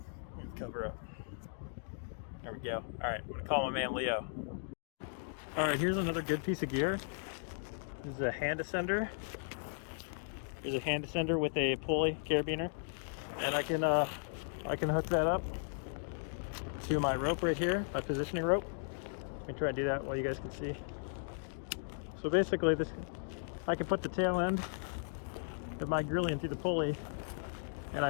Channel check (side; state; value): right; silent; digital silence